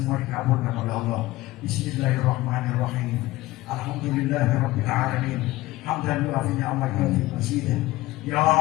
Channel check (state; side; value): quieter; right; 18.1 dB